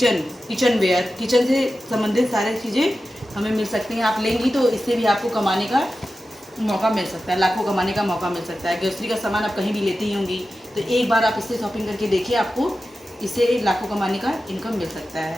वेयर, किचन से संबंधित सारी चीज़ें हमें मिल सकती हैं। आप लेंगी तो इससे भी आपको कमाने का मौका मिल सकता है, लाखों कमाने का मौका मिल सकता है। ग्रोसरी का सामान आप कहीं भी लेती ही होंगी, तो एक बार आप इससे शॉपिंग करके देखिए, आपको इससे लाखों कमाने का इनकम मिल सकता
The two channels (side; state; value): both; normal; correlation 0.93